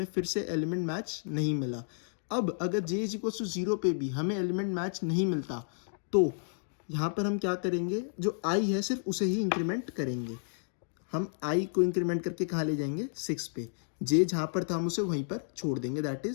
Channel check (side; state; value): right; silent; digital silence